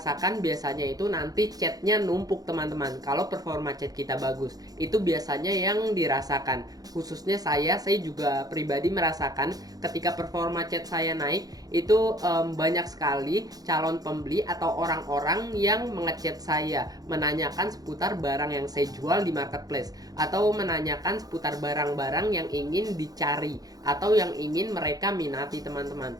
biasanya itu nanti chatnya numpuk, teman-teman. Kalau performa chat kita bagus, itu biasanya yang dirasakan. Khususnya saya juga pribadi merasakan ketika performa chat saya naik, itu banyak sekali calon pembeli atau orang-orang yang mengechat saya, menanyakan seputar barang yang saya jual di marketplace, atau menanyakan seputar barang-barang yang ingin dicari atau yang ingin mereka minati, teman-teman.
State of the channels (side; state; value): left; late; 0.18 ms